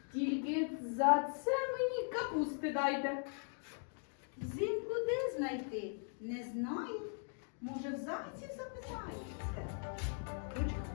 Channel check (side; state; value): right; silent; 51 dB below the other